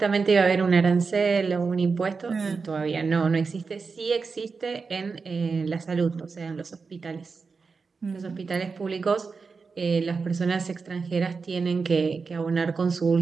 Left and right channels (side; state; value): left; quieter; 4.8 dB